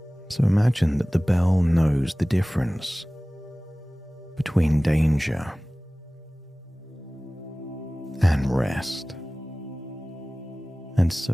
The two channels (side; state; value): both; normal; correlation 0.98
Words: So imagine that the bell knows the difference between danger and rest. And